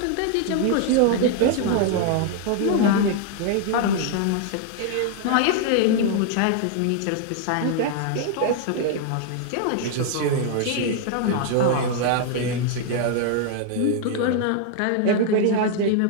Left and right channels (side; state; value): both; different; correlation 0.00